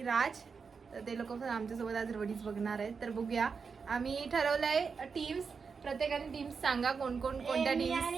राज. तर ते लोक पण आमच्यासोबत आज रोडीज बघणार आहेत. तर बघूया. आम्ही ठरवलंय टीम्स, प्रत्येकाने टीम्स सांगा कोण कोणत्या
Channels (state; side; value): quieter; left; 5.4 dB